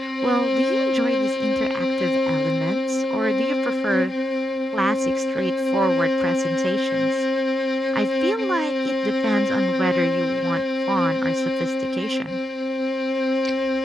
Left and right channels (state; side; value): normal; both; correlation 0.85